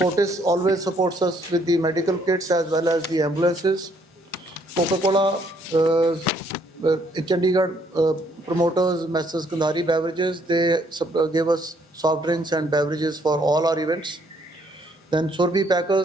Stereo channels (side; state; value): both; normal; correlation 0.67